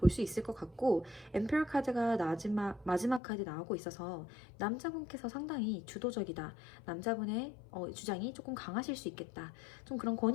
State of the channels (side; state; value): right; drops out; at 3.2 s